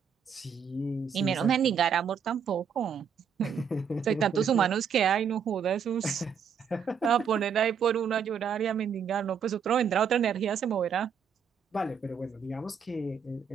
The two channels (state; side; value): quieter; left; 6.9 dB